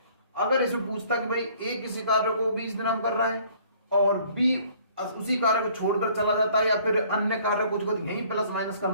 अगर इसमें पूछता कि भाई ए किसी कार्य को 20 दिन हम कर रहा है और बी उसी कार्य को छोड़कर चला जाता है, या फिर अन्य कार्य कुछ यही प्लस माइनस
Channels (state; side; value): inverted; both; correlation -0.57